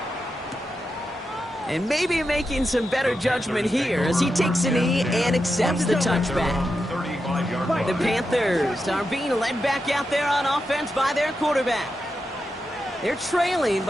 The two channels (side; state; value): both; normal; correlation 0.88